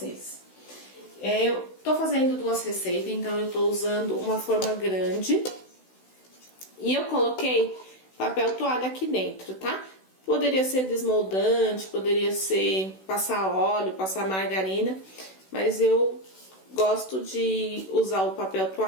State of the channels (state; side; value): late; right; 16 ms